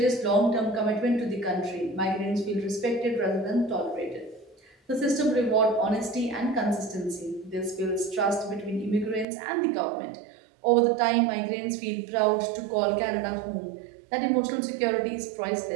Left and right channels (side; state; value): left; drops out; at 9.2 s